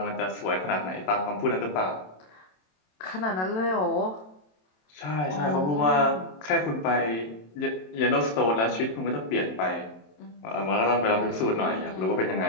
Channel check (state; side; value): late; right; 27 ms